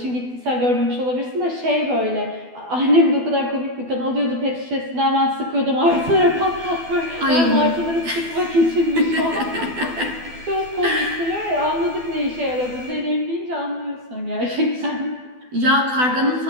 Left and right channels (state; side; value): late; left; 12 ms